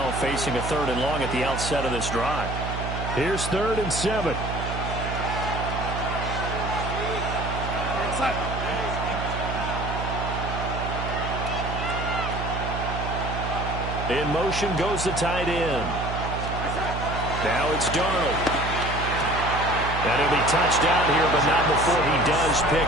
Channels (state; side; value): noise; right; hum, 5 dB below the sound